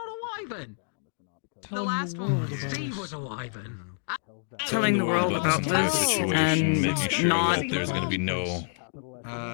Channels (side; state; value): right; silent; digital silence